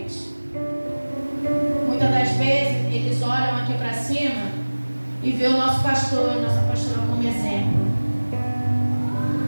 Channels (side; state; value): both; inverted; correlation -1.00